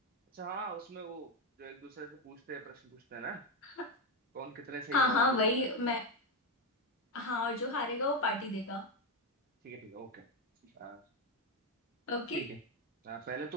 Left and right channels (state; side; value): normal; both; correlation 0.08